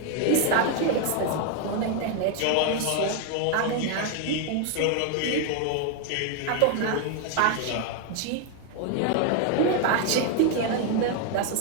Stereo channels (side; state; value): both; different; correlation 0.01